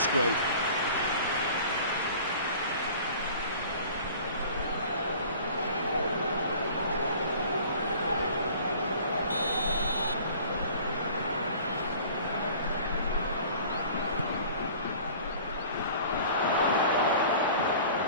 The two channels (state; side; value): inverted; both; correlation -0.46